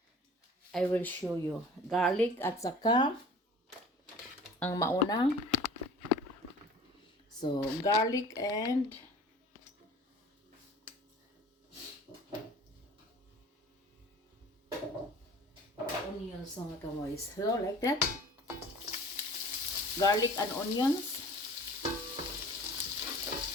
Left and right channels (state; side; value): normal; both; correlation 0.45